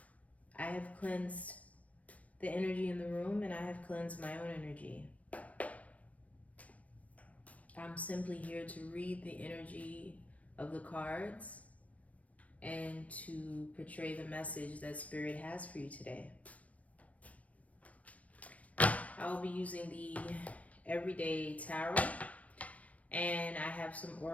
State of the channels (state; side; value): late; right; 0.067 ms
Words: I have cleansed the energy in the room and I have cleansed my own energy. I'm simply here to read the energy of the cards and to portray the message that Spirit has for you today. I'll be using the Everyday Tarot, and I have some